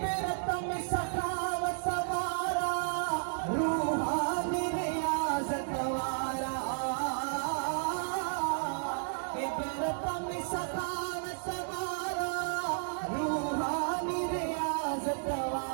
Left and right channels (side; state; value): left; silent; digital silence